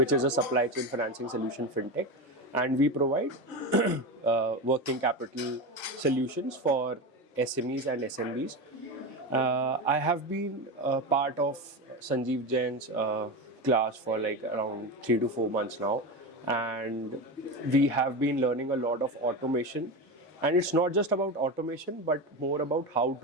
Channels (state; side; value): normal; both; correlation 0.20